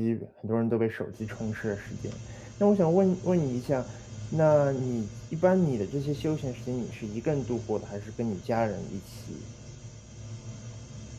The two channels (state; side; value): identical; both; correlation 1.00